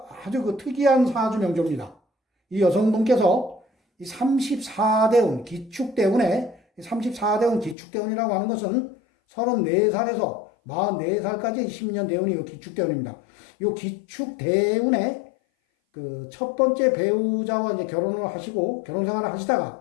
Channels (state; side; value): drops out; right; at 7.8 s